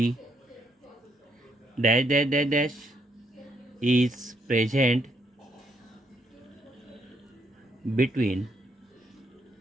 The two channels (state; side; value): normal; both; correlation 0.73